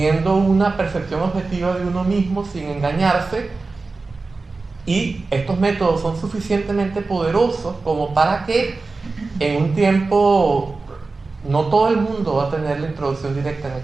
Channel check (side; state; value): left; quieter; 3.8 dB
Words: una percepción objetiva de uno mismo sin engañarse. Y estos métodos son suficientemente poderosos como para que en un tiempo, no todo el mundo va a tener la introducción directa en